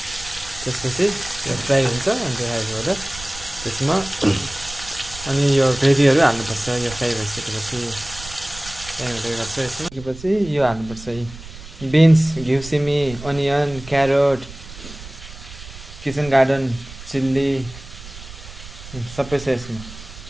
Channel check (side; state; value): right; noise; rumble, 15 dB below the sound